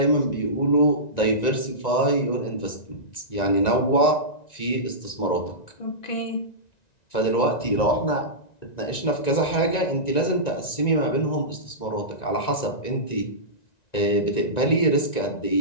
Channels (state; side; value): late; right; 1.9 ms